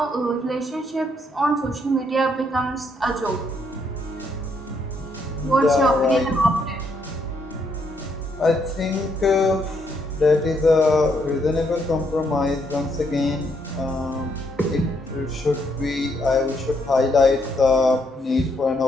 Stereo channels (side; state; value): both; normal; correlation 0.74